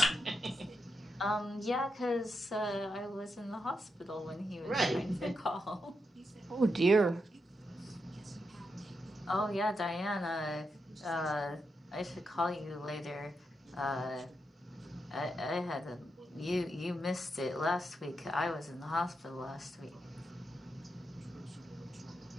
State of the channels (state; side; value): normal; both; correlation 0.84